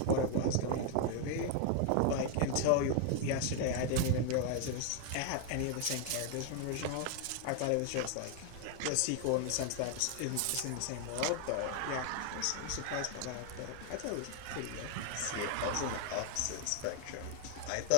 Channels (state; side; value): different; both; correlation 0.00